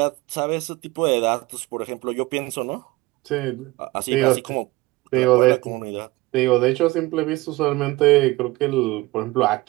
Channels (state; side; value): quieter; left; 20.8 dB